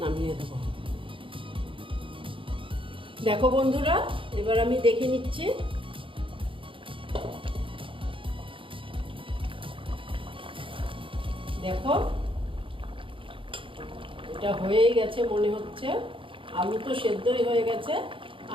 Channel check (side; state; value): left; late; 0.25 ms